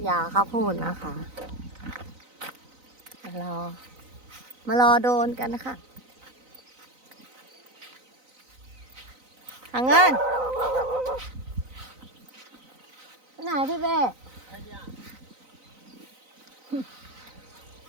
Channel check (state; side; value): late; left; 3.9 ms